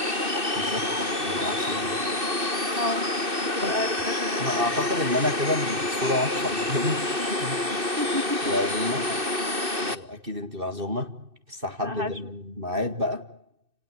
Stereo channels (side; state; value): left; late; 2.6 ms